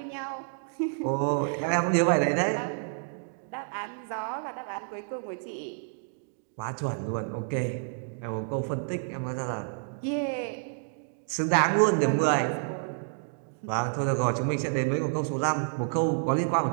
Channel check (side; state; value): left; silent; 58 dB below the other